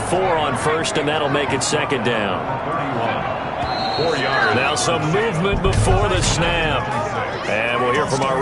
on 1st, and that'll make it 2nd down. 4 yards. Now some movement before the snap. And we'll hear from our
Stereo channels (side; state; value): both; identical; correlation 1.00